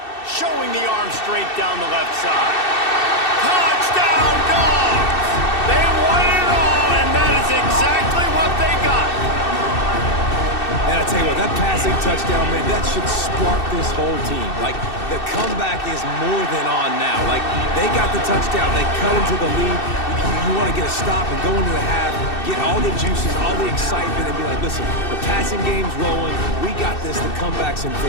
Showing the arm straight down the left side. Touchdown, Dogs! They won it all, and that is exactly what they got. And I tell you what, that passing touchdown, man, that should spark this whole team. Like, the comeback is more than on now. Like, they got the touchdown. They cut into the lead. You want to get a stop and go into the half, get all the juices, all the excitement, and be like, listen, the passing game's rolling. We got this. The comeback's in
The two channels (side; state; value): right; late; 2.6 ms